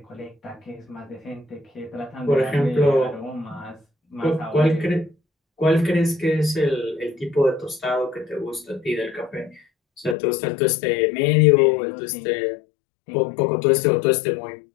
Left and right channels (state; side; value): drops out; right; at 10.2 s